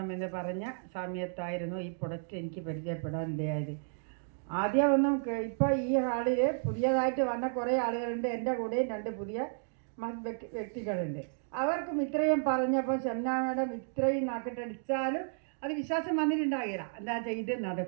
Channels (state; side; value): silent; left; digital silence